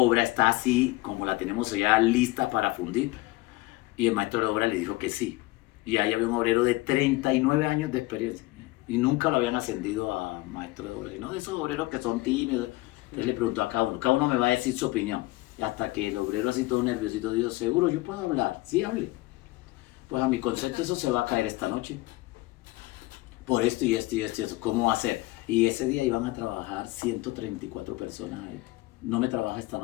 está así como la tenemos ya lista para fundir. Y el maestro de obra le dijo que sí. Y ahí había un obrero de 39 años de experiencia y nunca lo habían ascendido a maestro de obra. Y no de esos obreros que son tímidos. Entonces le preguntó a cada uno me va a decir su opinión. Y hasta que el obrero así todo nerviosito dijo, seguro yo puedo hablar, sí hable. Pues a mi concepto eso se va a caer esta noche. Por esto y esto y esto y eso. ¿Cómo va a ser? Y ese día iban a trabajar 134 personas ahí. No me trabaja esta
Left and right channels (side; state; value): right; quieter; 20.9 dB